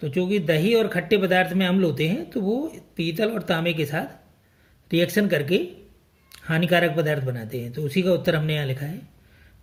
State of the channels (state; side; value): identical; both; correlation 1.00